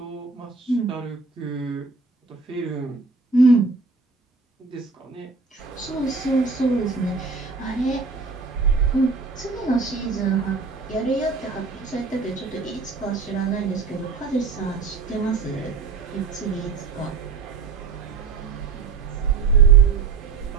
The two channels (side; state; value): left; quieter; 4.7 dB